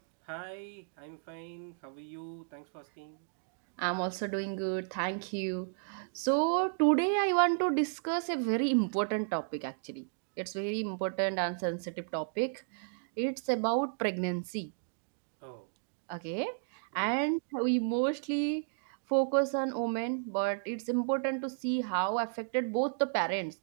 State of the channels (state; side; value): silent; left; digital silence